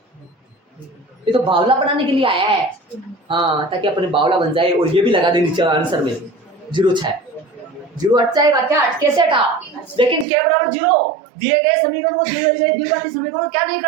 ये तो बावला बनाने के लिए आया है। हाँ ताकि अपने बावला बन जाए, और ये भी लगा दे नीचे आंसर में 0 हट जाएगा, क्या कैसे हटा, लेकिन के बराबर 0 दिए गए समीकरण को, दिए गए द्विघाती समीकरण को क्या नहीं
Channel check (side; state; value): left; drops out; at 10.2 s